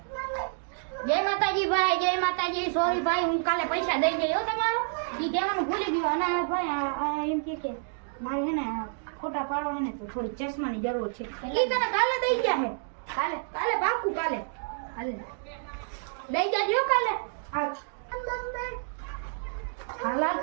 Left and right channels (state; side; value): silent; left; digital silence